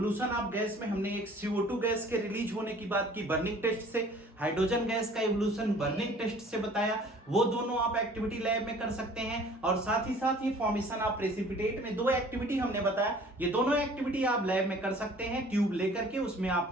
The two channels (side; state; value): both; normal; correlation 0.51